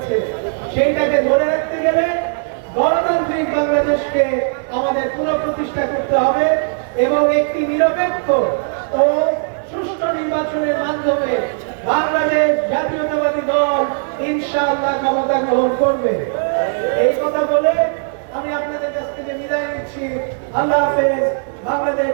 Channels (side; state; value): left; silent; digital silence